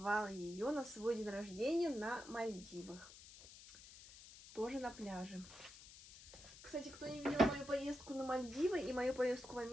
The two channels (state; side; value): noise; left; hiss, 17 dB below the sound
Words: ее на свой день рождения на Мальдивах. Тоже на пляже. Кстати, кто не видел мою поездку на Мальдивы и мою поездку в